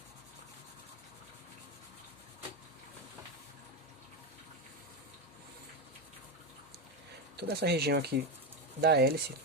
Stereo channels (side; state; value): both; normal; correlation 0.12